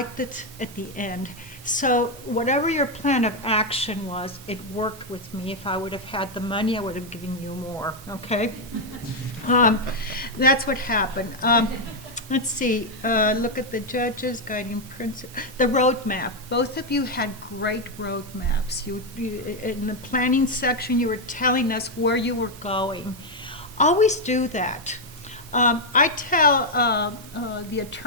it at the end. So whatever your plan of action was, it worked with me. If I would have had the money, I would have given you more, okay? That's what happened. Let's see, look at the judges, guiding principle, the roadmap. Both of you had great roadmaps. You, in the planning section, you were telling us where you were going. Always do that. I tell the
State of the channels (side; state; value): both; normal; correlation 0.02